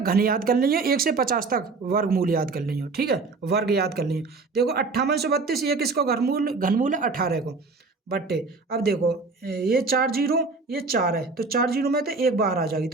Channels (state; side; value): quieter; left; 4.1 dB